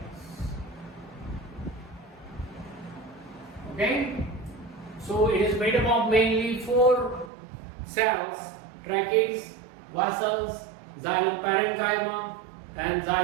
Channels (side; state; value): left; drops out; at 7.3 s